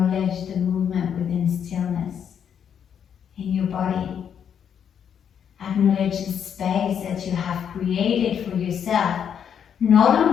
the movement within stillness in your body. Acknowledge the space that you have created for yourself, not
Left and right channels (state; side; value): quieter; right; 8.2 dB